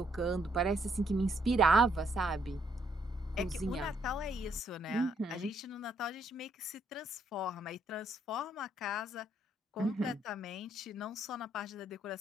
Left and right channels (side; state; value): both; normal; correlation 0.72